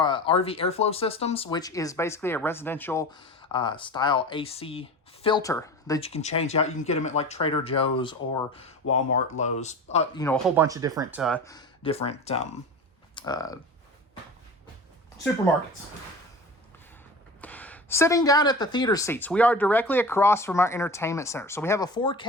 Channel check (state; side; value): normal; both; correlation 0.33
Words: airflow systems, which is basically a residential style AC filter that you can change out. You can get them at like Trader Joe's or Walmart, Lowe's, you know, a whole bunch of different supermarkets. Sitting down at the theater seats, we are directly across from our entertainment center. So we have a